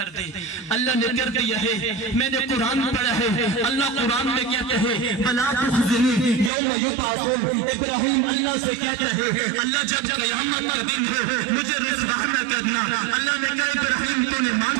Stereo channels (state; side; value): drops out; left; at 6.5 s